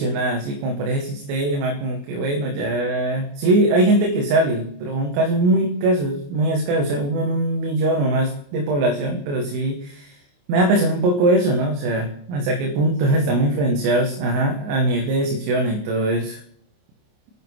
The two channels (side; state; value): left; late; 28 ms